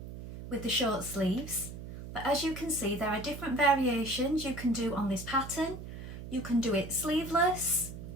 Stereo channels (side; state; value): right; noise; hum, 11 dB below the sound